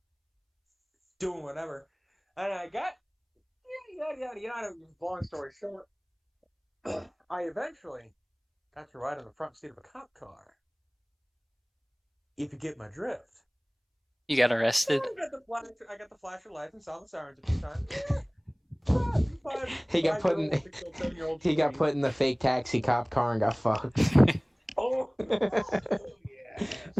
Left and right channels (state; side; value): identical; both; correlation 1.00